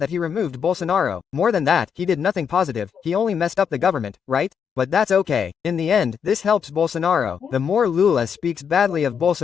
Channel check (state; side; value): quieter; right; 7.2 dB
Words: that he removed Bolsonaro. More than that, he did nothing positive, he only messed up the government, right? But that's okay. In the end, this helps Bolsonaro. The more Lula speaks badly of